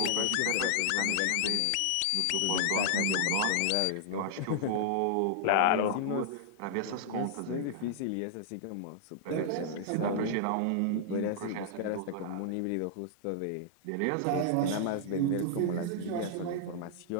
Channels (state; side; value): different; both; correlation -0.01